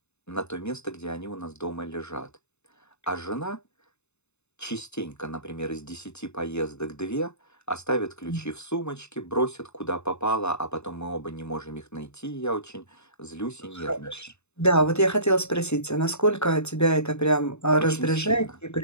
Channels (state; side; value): late; right; 0.81 ms